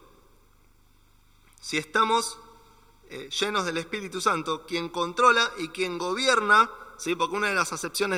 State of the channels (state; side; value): identical; both; correlation 1.00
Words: si estamos llenos del Espíritu Santo, quien controla y quien gobierna, ¿sí? Porque una de las